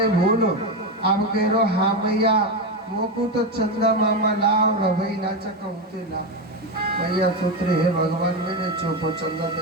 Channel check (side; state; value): both; normal; correlation 0.13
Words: भूल, अब कह रो हाँ मैया मोको तो चंदा मामा लाओ रवई ना चकते ला। मैया सोच रहे हे भगवान मैंने चोपो चंदा